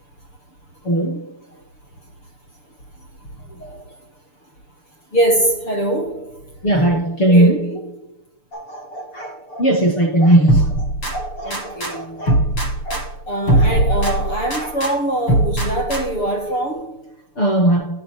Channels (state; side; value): late; right; 6.8 ms